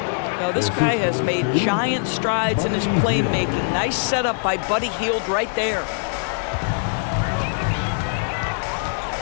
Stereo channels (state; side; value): silent; right; digital silence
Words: Now, this guy has made giant strides in his playmaking. Nice setup by Buddy Hield right there.